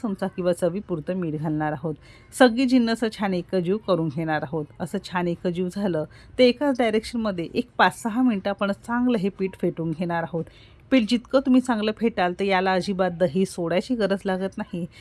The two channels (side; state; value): both; identical; correlation 1.00